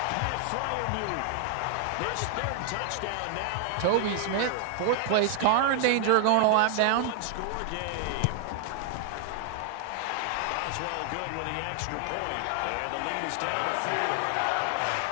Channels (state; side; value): different; both; correlation 0.00